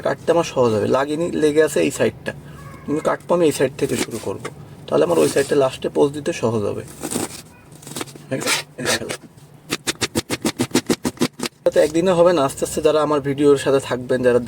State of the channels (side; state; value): both; identical; correlation 1.00